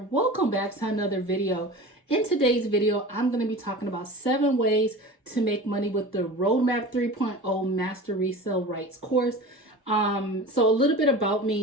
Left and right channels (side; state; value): both; normal; correlation 0.35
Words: back to another video. In today's video, I'm going to be talking about 7 ways to make money with the Roadmap 3.0 Master Resell Rights course. So a little bit about